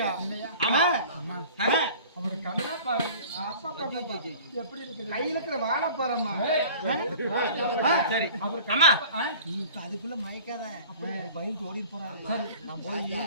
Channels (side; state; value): both; inverted; correlation -0.45